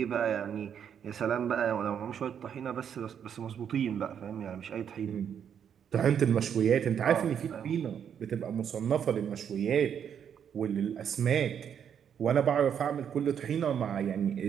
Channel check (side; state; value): left; quieter; 8.3 dB